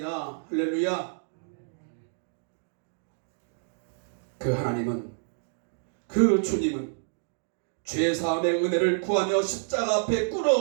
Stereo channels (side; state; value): left; silent; digital silence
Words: 할렐루야. 그 하나님은, 그 주님은 죄사함의 은혜를 구하며 십자가 앞에